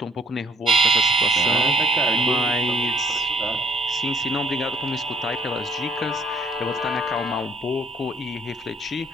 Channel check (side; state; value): both; normal; correlation 0.58